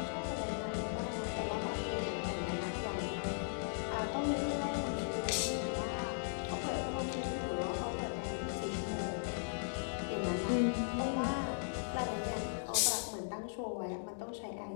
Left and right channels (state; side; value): silent; right; digital silence